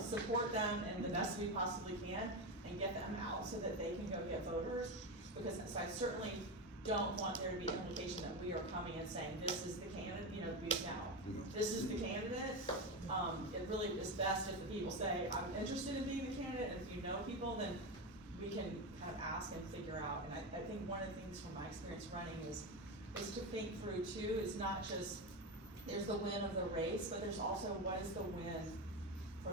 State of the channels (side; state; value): both; normal; correlation 0.16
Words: support them in the best we possibly can and get them out so that they can go get voters. Because so I certainly don't want there to be an implication that we are coming and saying, this is the candidate, this is the candidate. It really is best if the people say, I'm interested in being the candidate, and if you know people, then we can kind of ask and figure out. And I think one of the things from my experience running is to think through too, is not just, there's the win of the race, but there's also what is the win for